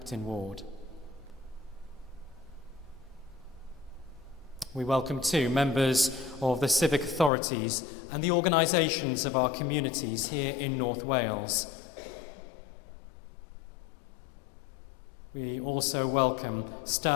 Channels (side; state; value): right; drops out; at 7.3 s